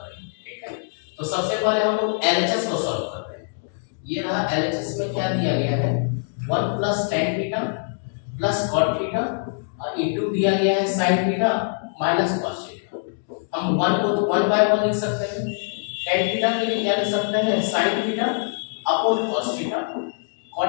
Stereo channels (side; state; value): right; silent; digital silence